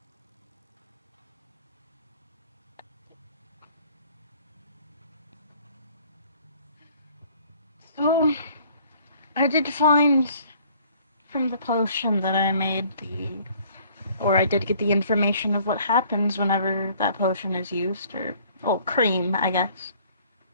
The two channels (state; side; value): inverted; both; correlation -0.57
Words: So, I did find from the potion that I made I did get the information of what happens whenever that potion is used, or cream, I guess.